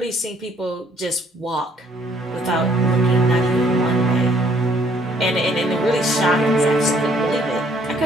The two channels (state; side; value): normal; both; correlation 0.63